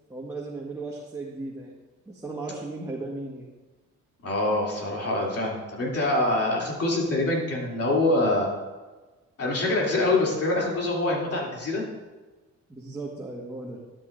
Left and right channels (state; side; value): normal; both; correlation 0.17